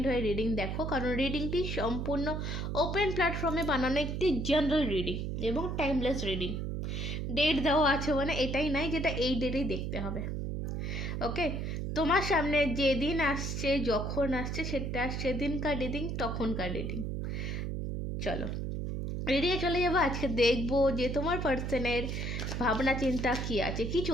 হয়ে রিডিং দেখো, কারণ রিডিংটি সম্পূর্ণ ওপেন প্ল্যাটফর্মে বানানো একটি জেনারেল রিডিং এবং টাইমলেস রিডিং। ডেট দেওয়া আছে মানে এটাই নাই যেটা এই ডেটেই দেখতে হবে। ওকে, তোমার সামনে যেদিন আসছে, যখন আসছে, সেটা সেদিনকার রিডিং, তখনকার রিডিং। চলো রিডিংয়ে চলে যাবো। আজকে দেখবো যে তোমার পার্সনের ভাবনা চিন্তা কী আছে, কি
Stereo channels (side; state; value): right; noise; hum, 3 dB below the sound